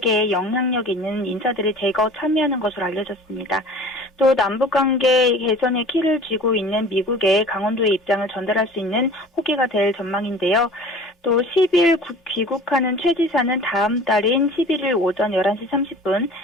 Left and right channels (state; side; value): normal; both; correlation 0.43